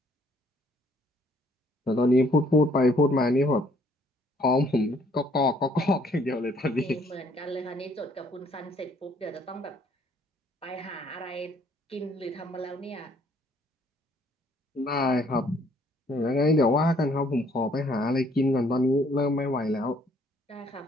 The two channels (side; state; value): both; normal; correlation 0.64